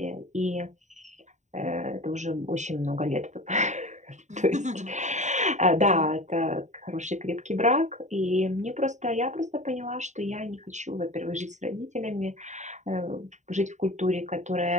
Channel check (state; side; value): late; left; 0.34 ms